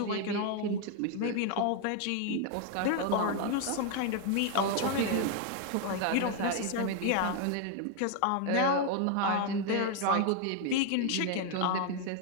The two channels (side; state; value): both; different; correlation 0.00